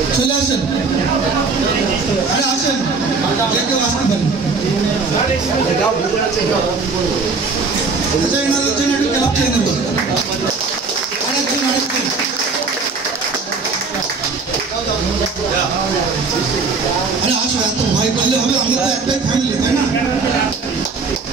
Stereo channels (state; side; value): quieter; left; 4.4 dB